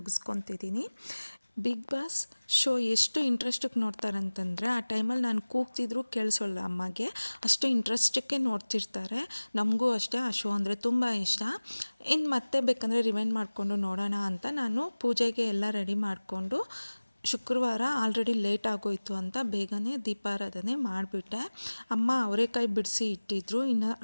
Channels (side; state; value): both; inverted; correlation -1.00